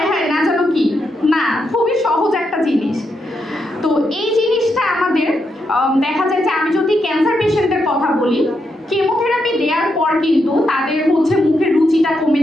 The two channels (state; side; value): normal; both; correlation 0.82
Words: হায় না জানো কি। না, খুবই সহজ একটা জিনিস। তো এই জিনিসটা আমাদের দেখা যায় যে আমি যদি ক্যান্সার পেশেন্টের কথা বলি, কেমোথেরাপি দেওয়ার পর কিন্তু তাদের হচ্ছে মুখের রুচিটা কমে